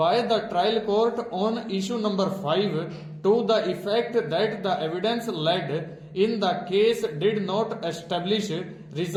the trial court on issue number 5 to the effect that the evidence led in the case did not establish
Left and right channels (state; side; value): identical; both; correlation 1.00